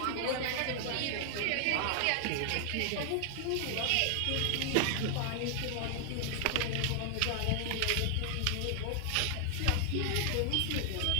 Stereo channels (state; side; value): different; both; correlation 0.00